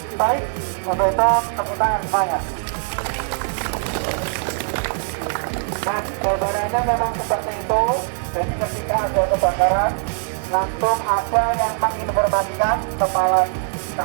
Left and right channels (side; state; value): left; silent; digital silence